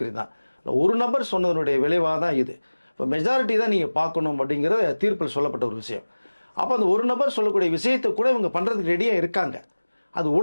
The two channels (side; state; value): both; inverted; correlation -1.00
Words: தான். ஒரு நபர் சொன்னதனுடைய விளைவாக தான் இது. இப்போ மெஜாரிட்டி தான் நீங்கள் பார்க்கணும் அப்படிங்கிற தீர்ப்பில் சொல்லப்பட்ட ஒரு விஷயம். அப்போ அந்த ஒரு நபர் சொல்லக்கூடிய விஷயத்தை கூட இவங்க பண்ணுறதுக்கு ரெடியாக இருக்காங்க. அது